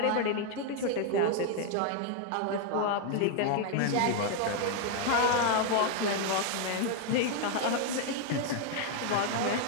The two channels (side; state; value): both; different; correlation 0.00